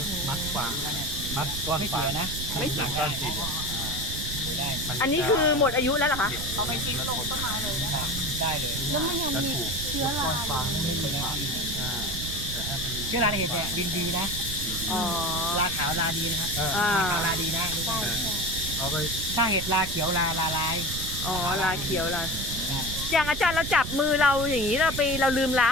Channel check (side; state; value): right; noise; rumble, 6 dB below the sound